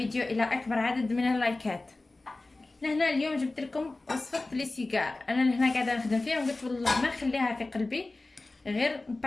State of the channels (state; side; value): quieter; right; 3.1 dB